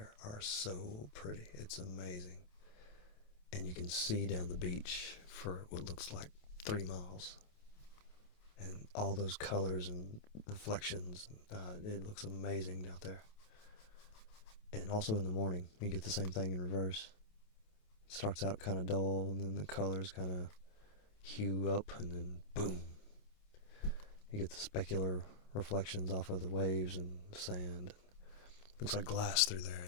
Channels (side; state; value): right; late; 28 ms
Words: are so pretty. It's amazing. And you can see down the beach for what looks like 3 miles. And all those colors and reflections, it looks amazing out there. And also in the morning, you get the same thing in reverse. It starts out kind of dull, and then the colors kind of hue up, and then boom, you get the specular reflections off of the waves and the sand. It looks like glass through there,